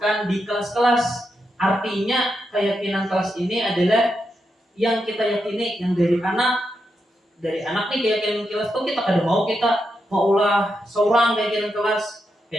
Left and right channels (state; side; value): normal; both; correlation 0.84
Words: di kelas-kelas. Artinya keyakinan kelas ini adalah yang kita yakini yang dari anak nih keyakinan kelas itu kita kada mau kita maulah seorang keyakinan kelas.